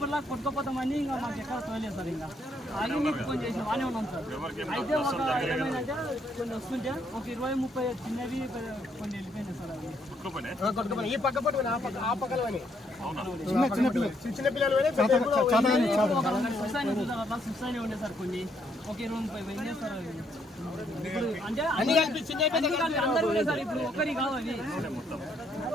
కొట్టుకోపోతామని ఇంకా మాకు ఎక్కడ తోలేదు సార్. ఇంకా ఆగి మీకు ఫోన్ చేసి బాగానే ఉన్నాం సార్. అయితే ఒక ఏమైందంటే కొన్ని వస్తుంటే ఒక 20-30 చిన్నవి కొన్ని వెళ్ళిపోయినాయి సార్. అవి ఈ పక్క పట్టుకుని ఆ పక్కన చిన్న పిల్లలు సుస్థానే ఉండే సార్. కొన్ని ఒక 20-30 పోయినాయి సార్. అంటే అందరూ ఉండే సార్. ఇప్పుడు ఒక్కరి కాదు అవి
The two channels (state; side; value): normal; both; correlation 0.72